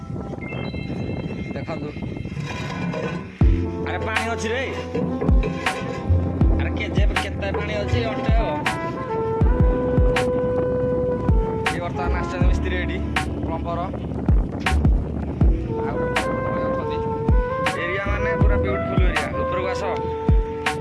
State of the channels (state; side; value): identical; both; correlation 1.00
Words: देखु अरे पानी अच्छी रे अरे केजे केते पानी अच्छी अटे बर्तमान आस मिस्त्री एटी प्लम्बर एरिया माने पूरा ब्यूटीफुल एरिया उपरको आस